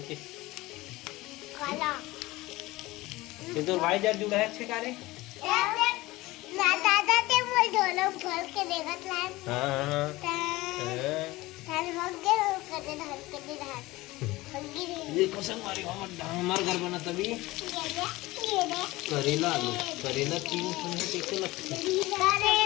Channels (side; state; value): right; quieter; 19.7 dB